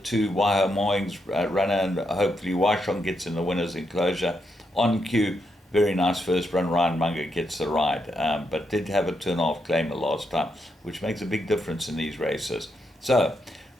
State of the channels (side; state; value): both; normal; correlation 0.81